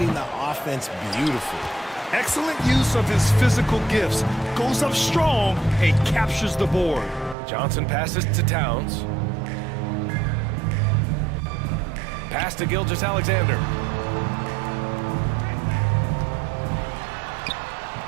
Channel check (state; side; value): drops out; left; at 7.4 s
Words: the offense beautifully. Excellent use of his physical gifts. Goes up strong and captures the board. Johnson passes to Towns. Pass to Gilgeous-Alexander.